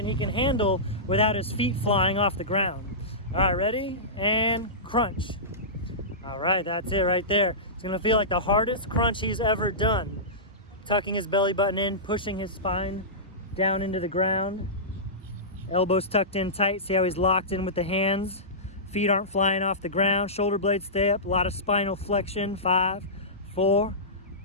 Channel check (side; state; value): both; normal; correlation -0.19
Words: he can handle without his feet flying off the ground. All right, ready? And crunch. All right, that's it right there. It's going to feel like the hardest crunch he's ever done. Tucking his belly button in, pushing his spine down into the ground. Elbows tucked in tight. See how he's locked in with the hands. Feet aren't flying off the ground. Shoulder blades stay up. A lot of spinal flexion. 5, 4,